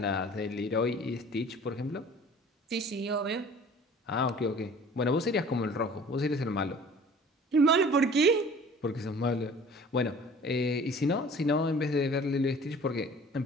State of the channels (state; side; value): normal; both; correlation 0.47